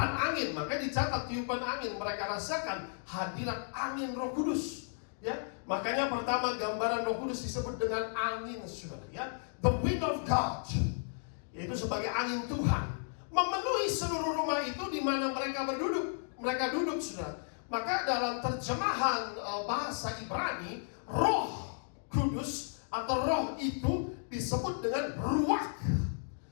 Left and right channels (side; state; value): right; silent; digital silence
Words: angin. Makanya dicatat tiupan angin. Mereka rasakan hadirat angin Roh Kudus, ya. Makanya pertama gambaran Roh Kudus disebut dengan angin, saudara, ya. The wind of God, yaitu sebagai angin Tuhan, memenuhi seluruh rumah itu di mana mereka berduduk. Mereka duduk, saudara. Maka dalam terjemahan bahasa Ibrani, Roh Kudus atau Roh itu disebut dengan ruach.